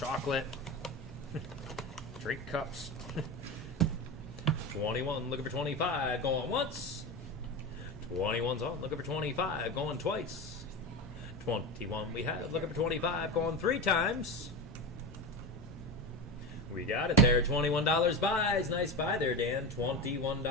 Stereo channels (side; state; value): both; normal; correlation 0.22